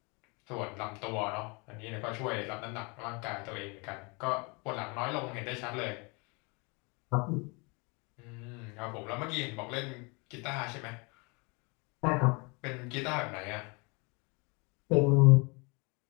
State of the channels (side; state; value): right; quieter; 30.1 dB